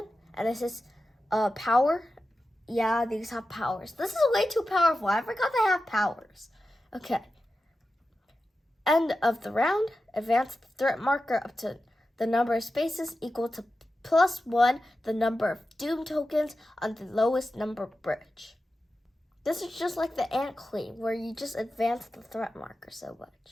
and this is power. Yeah, these have powers. This is way too powerful. I forgot they have powers. Okay. End of the round. Advance the threat marker up to the number of spaces equal to +1 the number of doom tokens on the lowest number bridge. This is just like the Ant Queen, where you just advance the threat marker so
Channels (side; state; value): both; normal; correlation 0.92